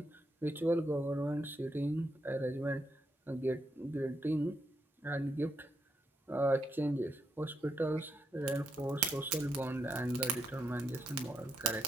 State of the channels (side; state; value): both; normal; correlation 0.80